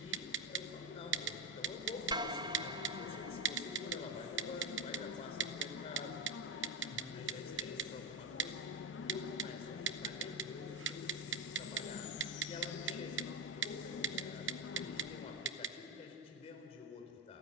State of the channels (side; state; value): both; normal; correlation 0.14